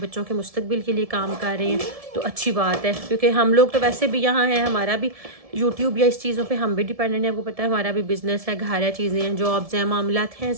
के मुस्तकबिल के लिए काम कर रहे हैं। तो अच्छी बात है, क्योंकि हम लोग तो वैसे भी यहाँ हैं, हमारा भी यूट्यूब या इस चीज़ों पे हम भी डिपेंडेंट है। आपको पता है हमारा भी बिजनेस है, घर है, चीज़ें हैं, जॉब्स हैं, मामलात हैं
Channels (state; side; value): late; left; 1.7 ms